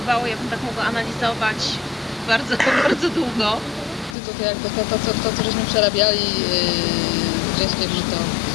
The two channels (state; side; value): drops out; right; at 4.2 s